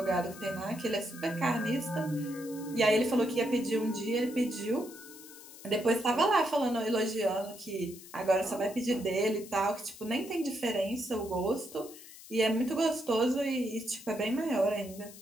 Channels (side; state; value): left; noise; hiss, 17 dB below the sound